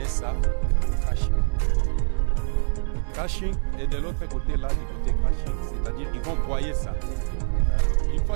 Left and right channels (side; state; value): left; silent; 60 dB below the other